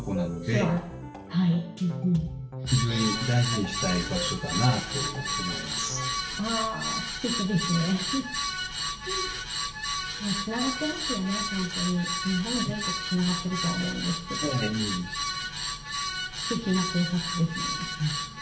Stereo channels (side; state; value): both; identical; correlation 1.00